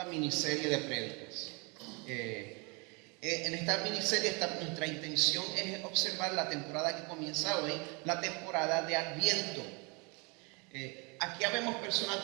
miniserie de prédicas. En esta miniserie nuestra intención es observar la temporada que comienza hoy, la temporada de Adviento. Aquí habemos personas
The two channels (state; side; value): quieter; left; 30.7 dB